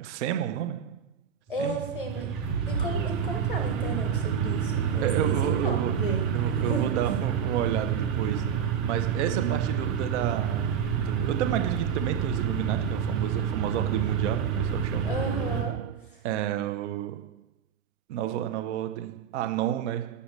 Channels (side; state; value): left; quieter; 7.8 dB